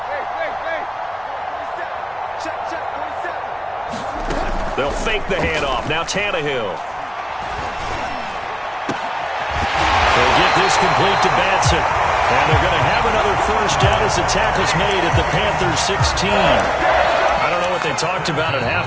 They'll fake the handoff. Now Tannehill. They'll get this complete to Batson. And they're going to have another first down as the tackle's made at the Panthers 16. I don't know what they talked about at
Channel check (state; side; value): identical; both; correlation 1.00